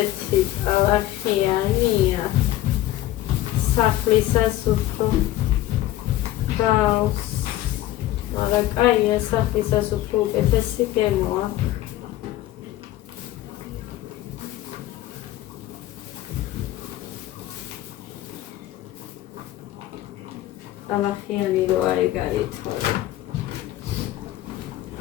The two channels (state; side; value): quieter; right; 14.7 dB